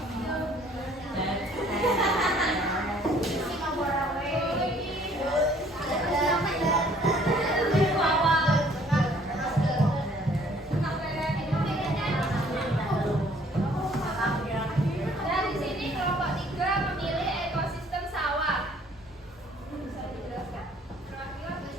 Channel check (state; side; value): normal; both; correlation 0.58